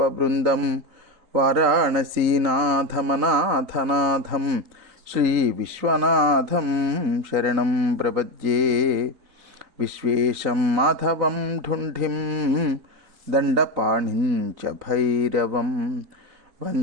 వారాణసీనాథమనాథనాథం శ్రీ విశ్వనాథం శరణం ప్రపద్యే. విశ్వేశం మాధవం ఢుంఢిం దండపాణిం చ భైరవం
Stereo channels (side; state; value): left; late; 3.9 ms